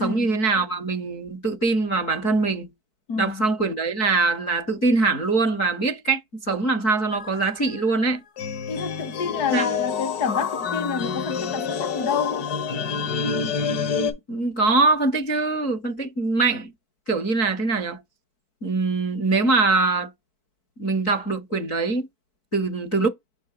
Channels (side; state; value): right; late; 4.6 ms